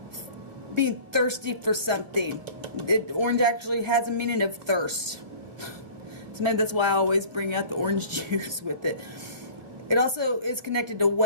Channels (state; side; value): late; left; 1.5 ms